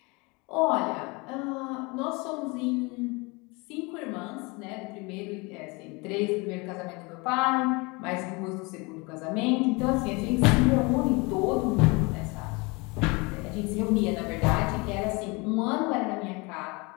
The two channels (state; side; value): quieter; right; 27.2 dB